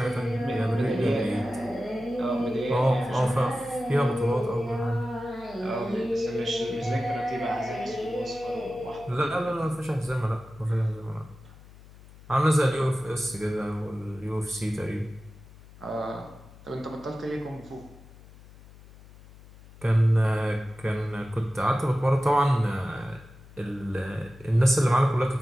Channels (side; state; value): left; noise; hum, 21 dB below the sound